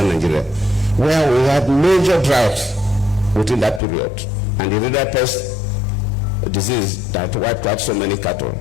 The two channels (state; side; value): drops out; right; at 3.8 s